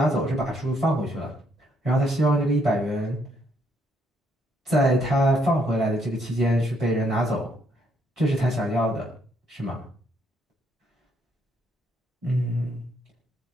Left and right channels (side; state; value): both; normal; correlation 0.71